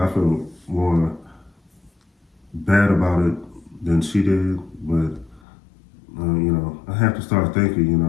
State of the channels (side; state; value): right; drops out; at 5.4 s